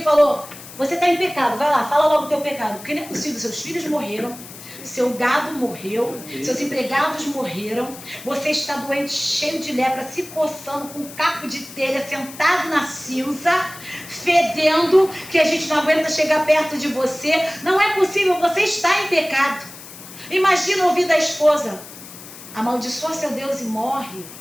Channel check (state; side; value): noise; left; hiss, 16 dB below the sound